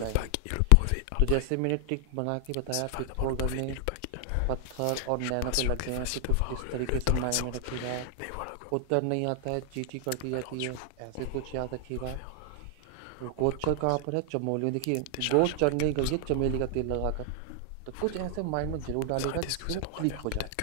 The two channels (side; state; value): both; different; correlation 0.00